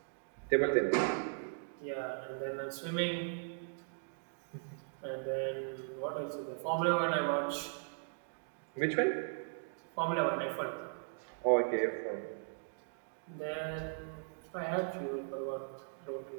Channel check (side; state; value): left; silent; digital silence